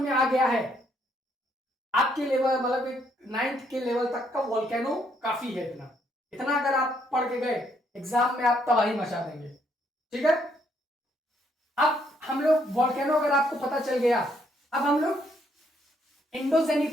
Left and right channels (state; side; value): normal; both; correlation 0.71